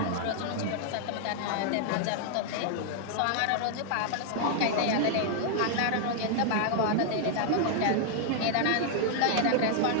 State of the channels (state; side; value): different; both; correlation 0.00